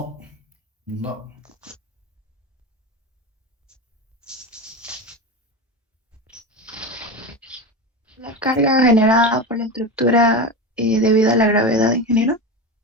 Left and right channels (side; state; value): both; normal; correlation 0.22